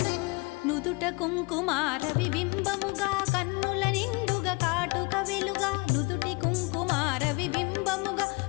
కుంకుమార విబింబముగా కన్నుల నిండుగా కాటుక వెలుగా నుదుటి కుంకుమార విబింబముగా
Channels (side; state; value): right; quieter; 27.6 dB